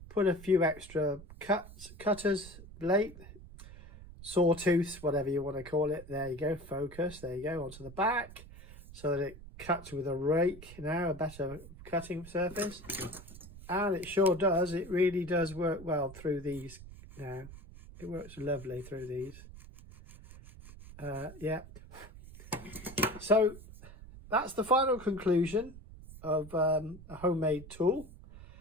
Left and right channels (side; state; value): right; noise; rumble, 16 dB below the sound